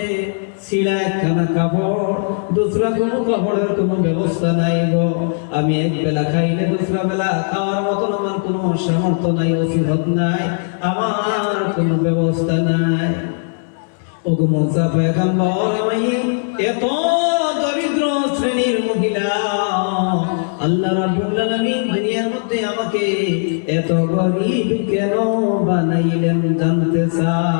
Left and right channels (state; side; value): silent; right; digital silence